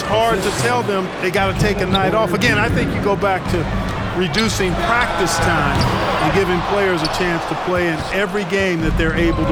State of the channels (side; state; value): both; identical; correlation 1.00